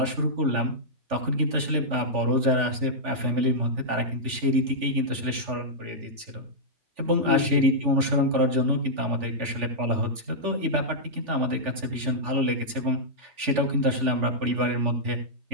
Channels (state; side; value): late; left; 3.4 ms